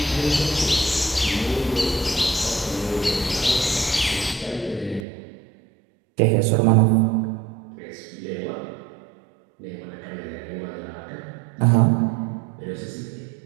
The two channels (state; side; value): drops out; left; at 5.1 s